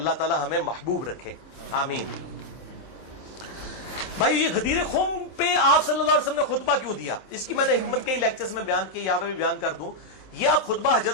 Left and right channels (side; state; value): right; late; 27 ms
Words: تعالیٰ ہمیں محبوب رکھے، آمین۔ بھائی یہ غدیر خم پہ آپ صلی اللہ علیہ وسلم نے خطبہ کیوں دیا؟ اس کی میں نے حکمت کئی لیکچرز میں بیان کی، یہاں پہ بھی بیان کر دوں۔ یہ آپ خطبہ